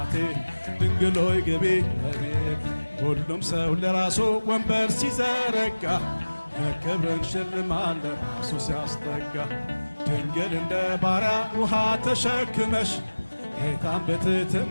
ድንግል ሆይ ግቢ እቤቴ ሁሉም ሰው ለራሱ ወንበር ሲዘረጋ ክብርን ሽልማት ለራሱ ሲያስጠጋ ድንግል እንደ ባሪያ ውሃ ተሸክመሽ ጌታን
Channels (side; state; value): both; inverted; correlation -1.00